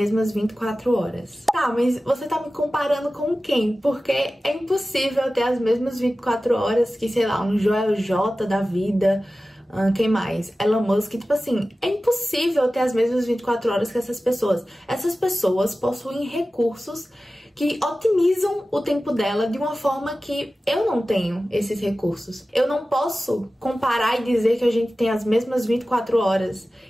24 horas. Tá, mas você tá me comparando com quem? Porque é impossível ter as mesmas 24 horas que, sei lá, um Joel J da vida, quem mais? Elon Musk, tipo assim, é impossível ter as mesmas 24 horas que essas pessoas. Essas pessoas possuem recursos que otimizam o tempo dela de uma forma que eu não tenho esses recursos. Eu não posso comparar e dizer que a gente tem as mesmas 24 horas,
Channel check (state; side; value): normal; both; correlation 0.95